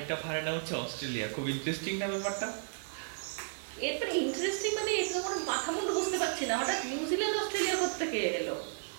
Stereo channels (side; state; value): left; silent; digital silence